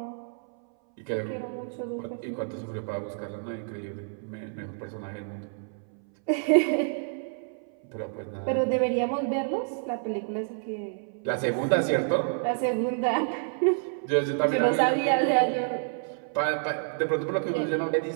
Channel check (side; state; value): left; silent; 58 dB below the other